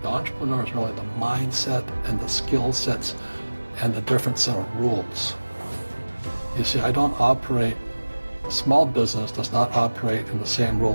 The entrepreneur is really the mindset and the skill sets and the different set of rules. You see, I don't operate, small business does not operate in the same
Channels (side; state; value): both; inverted; correlation -1.00